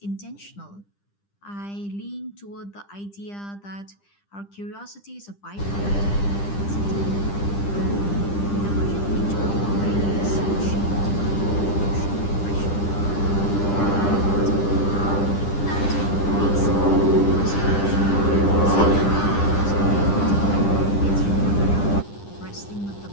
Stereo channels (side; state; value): right; late; 10 ms